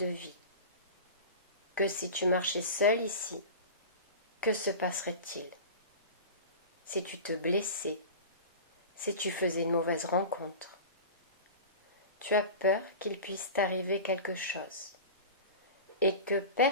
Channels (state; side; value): inverted; both; correlation -0.32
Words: vie, que si tu marchais seul ici, que se passerait-il? Si tu te blessais, si tu faisais une mauvaise rencontre, tu as peur qu'il puisse t'arriver quelque chose et que